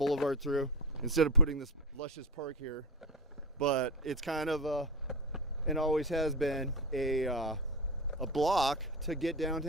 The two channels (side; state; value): both; normal; correlation 0.19